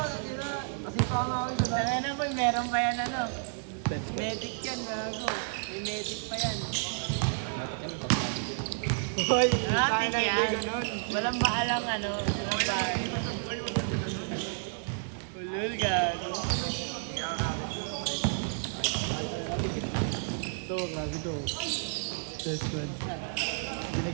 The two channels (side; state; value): left; silent; digital silence